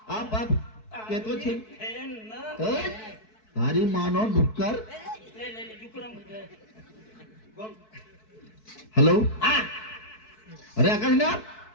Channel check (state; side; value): late; right; 4.6 ms